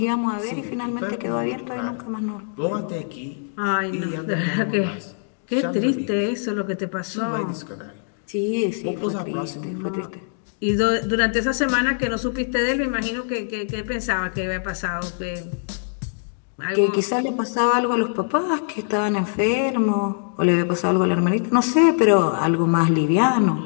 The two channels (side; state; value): right; silent; digital silence